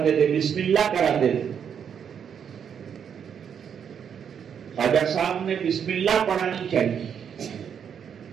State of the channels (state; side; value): quieter; left; 7.8 dB